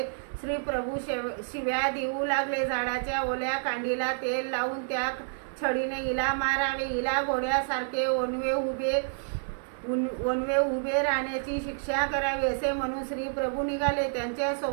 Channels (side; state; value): left; silent; digital silence